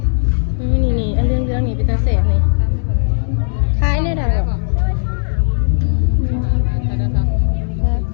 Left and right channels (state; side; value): silent; right; digital silence